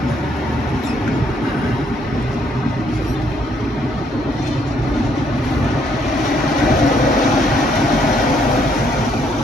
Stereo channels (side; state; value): both; normal; correlation 0.69